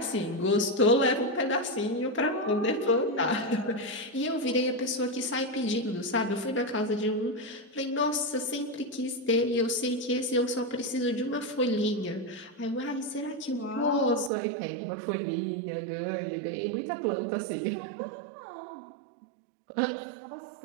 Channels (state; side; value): drops out; left; at 14.3 s